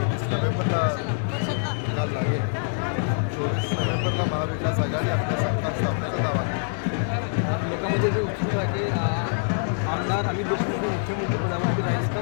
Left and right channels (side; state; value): right; silent; digital silence